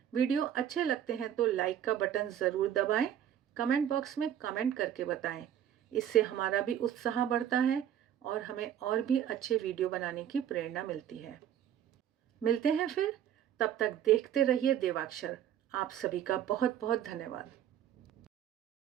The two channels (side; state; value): left; quieter; 10.3 dB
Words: वीडियो अच्छे लगते हैं तो लाइक का बटन ज़रूर दबाएं, कमेंट बॉक्स में कमेंट करके बताएं। इससे हमारा भी उत्साह बढ़ता है और हमें और भी अच्छे वीडियो बनाने की प्रेरणा मिलती है। मिलते हैं फिर, तब तक देखते रहिए देवाक्षर। आप सभी का बहुत बहुत धन्यवाद।